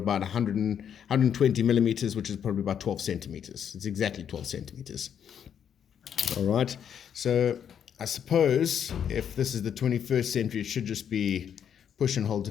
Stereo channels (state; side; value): quieter; right; 8.5 dB